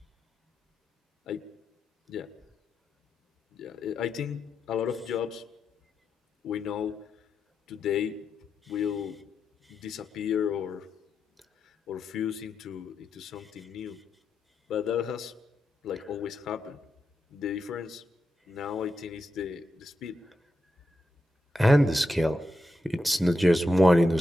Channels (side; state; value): both; normal; correlation 0.87